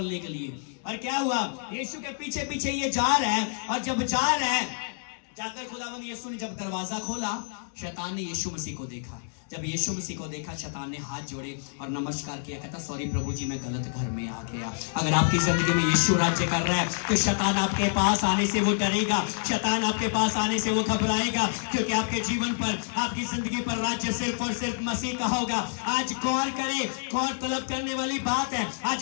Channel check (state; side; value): silent; right; digital silence